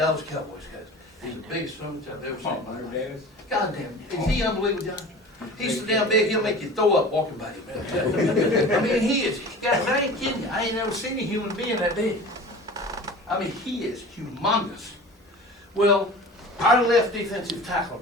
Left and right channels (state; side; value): normal; both; correlation 0.39